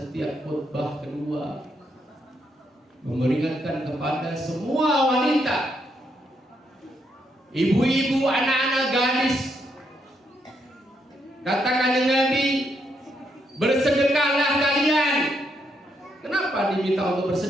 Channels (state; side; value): normal; both; correlation 0.77